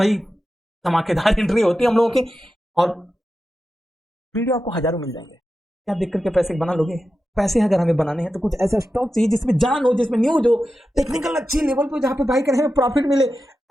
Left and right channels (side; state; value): both; normal; correlation 0.91